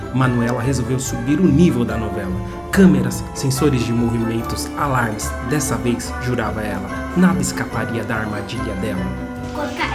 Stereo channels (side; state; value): both; identical; correlation 1.00